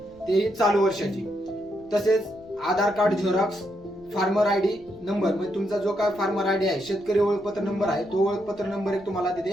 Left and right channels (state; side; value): noise; left; rumble, 26 dB below the sound